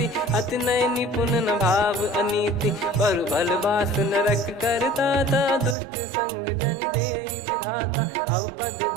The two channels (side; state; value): left; drops out; at 5.8 s